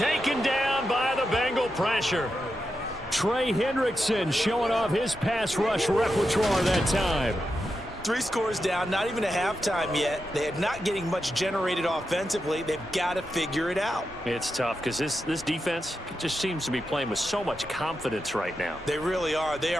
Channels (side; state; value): both; normal; correlation 0.88